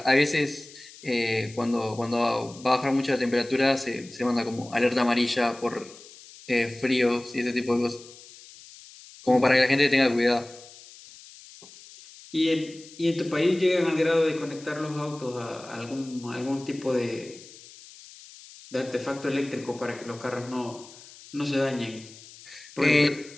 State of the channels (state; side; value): noise; left; hiss, 20 dB below the sound